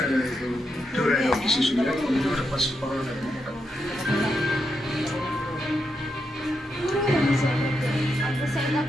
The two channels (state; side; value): normal; both; correlation 0.84